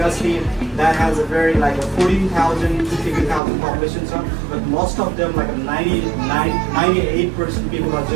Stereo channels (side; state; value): left; drops out; at 3.4 s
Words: that has a very like a 14,000 to 15,000 population, so, but most of them like a 98% people are